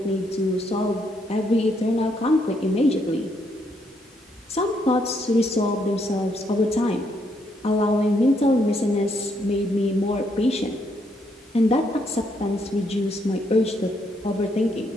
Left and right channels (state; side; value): normal; both; correlation 0.74